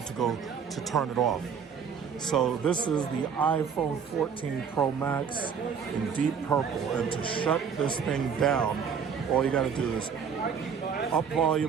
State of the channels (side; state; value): left; quieter; 6.7 dB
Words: to turn it off. So this is the iPhone 14 Pro Max in deep purple. And to shut this thing down, all you gotta do is up